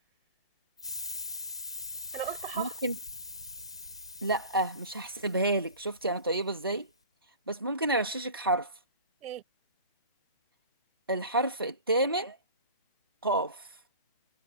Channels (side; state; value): both; inverted; correlation -0.38